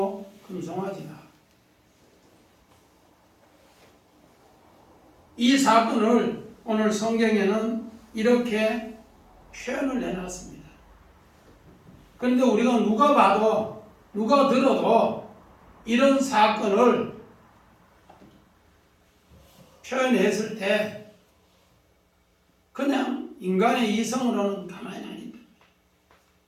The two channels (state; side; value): identical; both; correlation 1.00